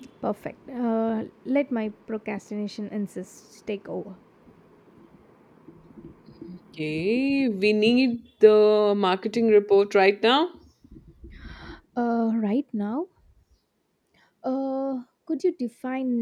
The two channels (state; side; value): identical; both; correlation 1.00